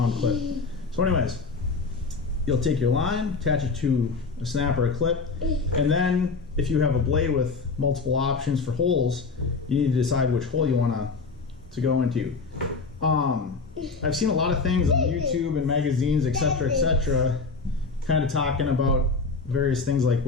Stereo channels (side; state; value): right; quieter; 4.3 dB